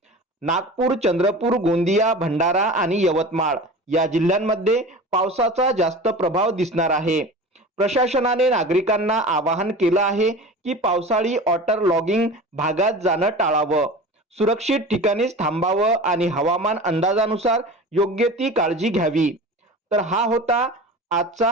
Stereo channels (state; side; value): normal; both; correlation 0.34